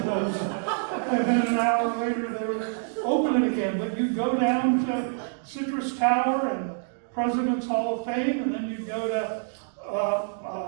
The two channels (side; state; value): left; silent; digital silence